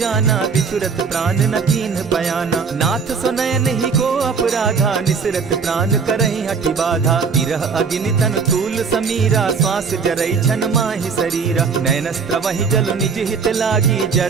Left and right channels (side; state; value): left; quieter; 5.5 dB